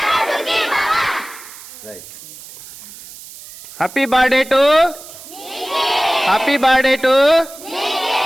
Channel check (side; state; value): right; noise; hiss, 17 dB below the sound